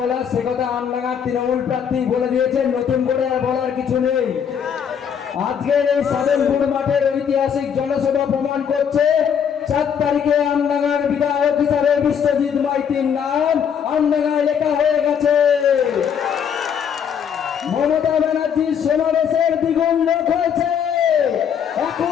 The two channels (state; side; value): quieter; right; 7.8 dB